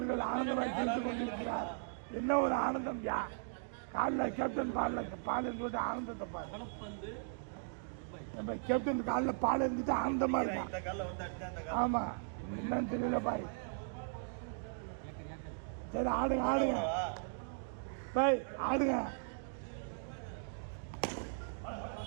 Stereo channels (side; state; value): left; silent; digital silence